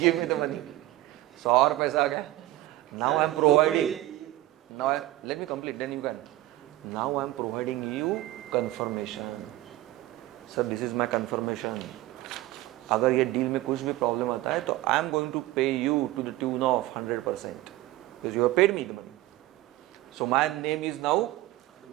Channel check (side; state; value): left; quieter; 16.8 dB